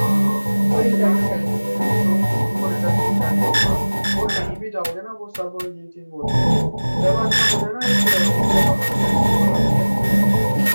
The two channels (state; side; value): inverted; both; correlation -1.00